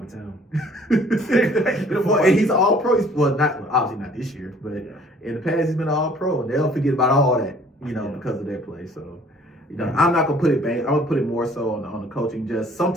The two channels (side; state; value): both; normal; correlation 0.55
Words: of town. And he's all pro. Obviously not this year, but in the past he's been all pro, and they'll forget about all that, because of their play. So. I'm not gonna put it back. I'm gonna put it more so on the coaching. Just